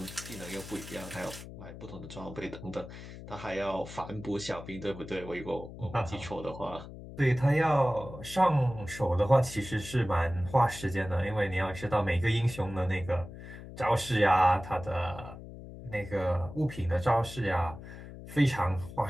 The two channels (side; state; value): left; noise; hum, 13 dB below the sound